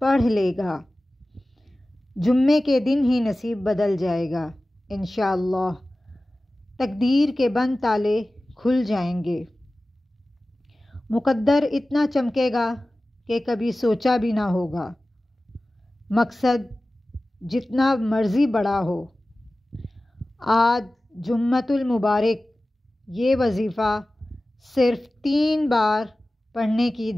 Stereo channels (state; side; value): normal; both; correlation 0.96